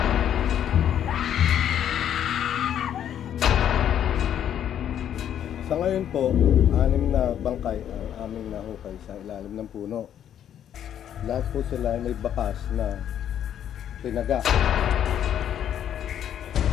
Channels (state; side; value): quieter; right; 10.0 dB